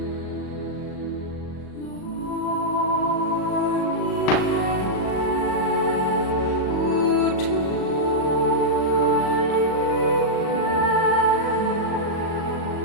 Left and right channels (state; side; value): late; right; 37 ms